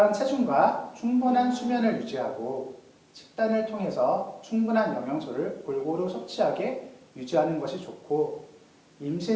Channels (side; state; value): both; identical; correlation 1.00